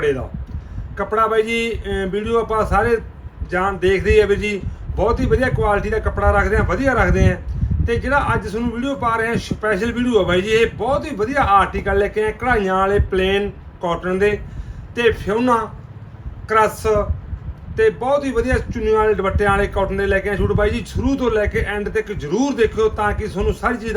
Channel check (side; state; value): both; identical; correlation 1.00